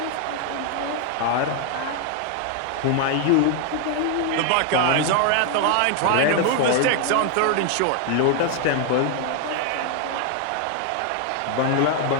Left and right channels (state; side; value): different; both; correlation 0.00